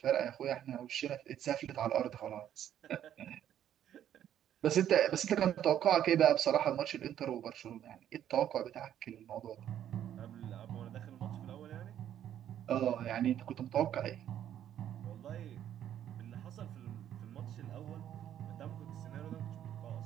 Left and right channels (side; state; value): left; quieter; 10.7 dB